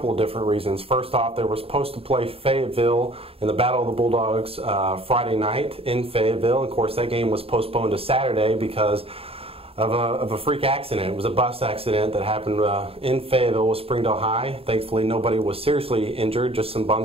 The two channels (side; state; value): left; late; 0.28 ms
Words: of different reasons. First off, they were supposed to play Fayetteville in the Battle of the Bulldogs Friday night in Fayetteville. Of course, that game was postponed to Saturday because of a freak accident. It was a bus accident that happened in Fayetteville with Springdale High. Thankfully, nobody was seriously injured, just some